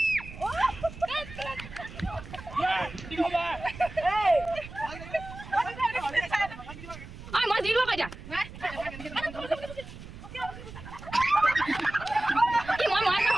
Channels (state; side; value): noise; right; rumble, 14 dB below the sound